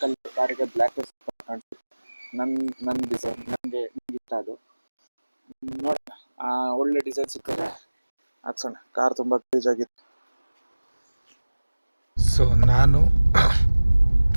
ಕಲರ್ ಕಾರಿಗೆ ಬ್ಲ್ಯಾಕ್ ಕಾಣಿಸುತ್ತೆ. ನನ್ನ ಡಿಸೈನ್ ನನಗೆ ಇಷ್ಟ. ಅದು ನೋಡೋಣ, ಒಳ್ಳೆ ಡಿಸೈನ್ ಸಿಕ್ಕಿದ್ರೆ ಹಾಕ್ಸೋಣ. ಕಾರ್ ತುಂಬ ಗಲೀಜಾಗಿತ್ತು. ಸೊ ನಾನು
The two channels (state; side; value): inverted; both; correlation -1.00